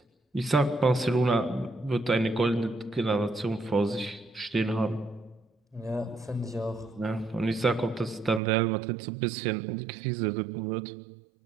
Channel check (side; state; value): left; drops out; at 8.4 s